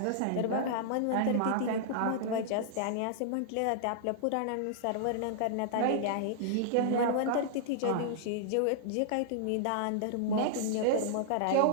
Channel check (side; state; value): both; different; correlation -0.01